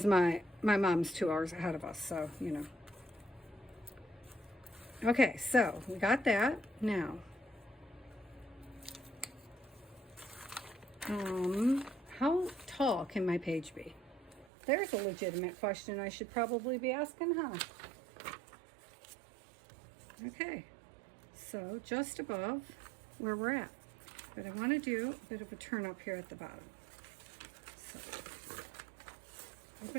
my mom's 2 hours ahead of us, so, you know. Okay, so we got that. Now, how tall can my page be? There's a legitimate question I should probably be asking, huh? Okay, so just above where we're at. But I want to do a bit of a turn up here at the bottom. So,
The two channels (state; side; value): drops out; left; at 14.5 s